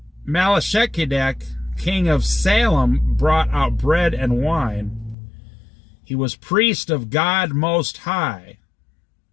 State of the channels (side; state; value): right; drops out; at 5.2 s